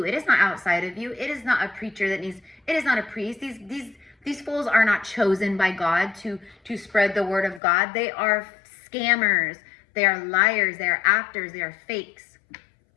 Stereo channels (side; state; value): right; drops out; at 7.6 s